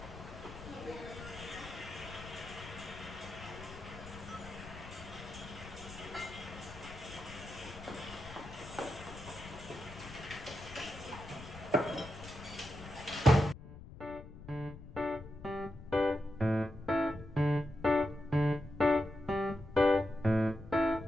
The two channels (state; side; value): noise; left; rumble, 14 dB below the sound